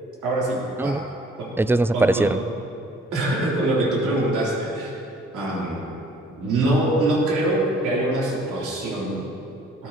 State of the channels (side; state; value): both; normal; correlation 0.56